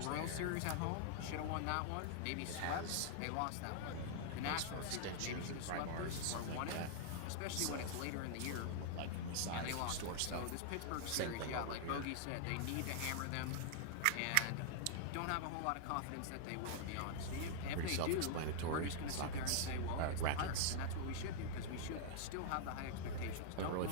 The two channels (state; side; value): different; both; correlation 0.00